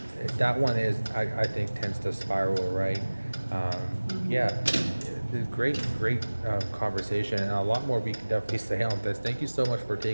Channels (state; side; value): inverted; both; correlation -1.00